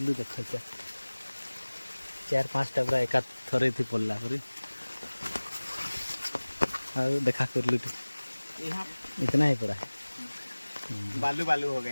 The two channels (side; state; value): both; inverted; correlation -1.00